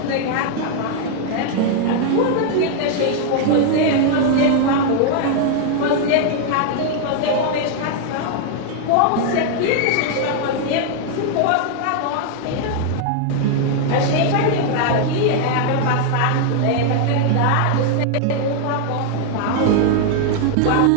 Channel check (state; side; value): different; both; correlation 0.00